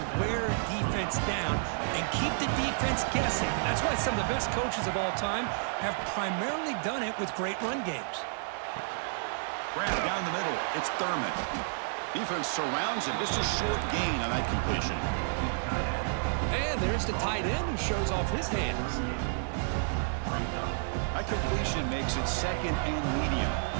wear a defense down and keep the defense guessing. That's why some of the best coaches of all time have primarily done it with great run games. Grant down the middle. It's Thurman. Defense surrounds him. Just a short gain on that completion. And there's the tight end who shows off his hands. That completion makes it 2nd and medium.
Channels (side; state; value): left; silent; digital silence